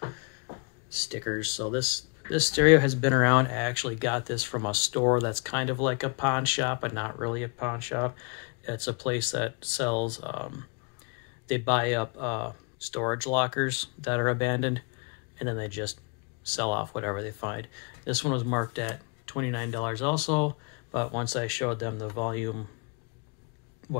stickers. So this stereo has been around. I actually got this from a store that's kind of like a pawn shop, but not really a pawn shop. It's a place that sells, they buy up storage lockers that are abandoned, and then they just sell off whatever they find. This one was marked at $29 also, but once I showed them the volume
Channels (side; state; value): right; quieter; 35.4 dB